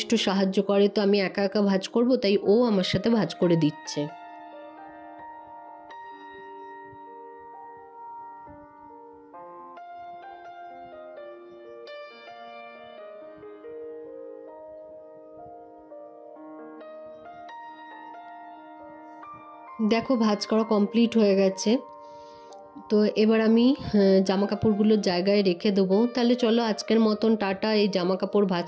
সাহায্য করে। তো আমি একা একা ভাঁজ করব, তাই ও আমার সাথে ভাঁজ করে দিচ্ছে। দেখো ভাঁজ করা কমপ্লিট হয়ে গেছে। তো এবার আমি জামা কাপড়গুলো জায়গায় রেখে দেবো। তাহলে চলো আজকের মতন টাটা। এই জামা কাপড় ভাঁজ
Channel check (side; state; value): both; identical; correlation 1.00